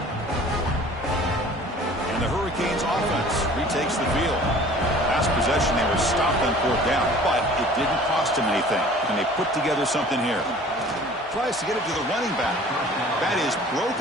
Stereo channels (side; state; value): both; normal; correlation 0.48